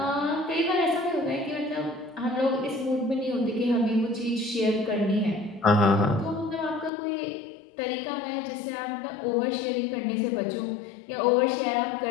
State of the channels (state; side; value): drops out; right; at 6.9 s